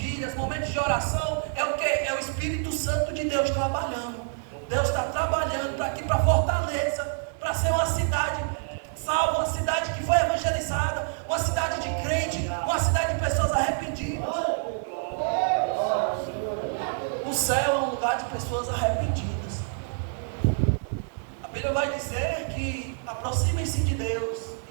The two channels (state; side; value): silent; left; digital silence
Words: momentos de oração. É o que? É o Espírito Santo de Deus trabalhando. Deus está trabalhando para aqui, para Fortaleza, para ser uma cidade salva, uma cidade que foi evangelizada, uma cidade de crente, uma cidade de pessoas arrependidas. O céu é um lugar de pessoas arrependidas. A Bíblia vai dizer que aproximem-se de Deus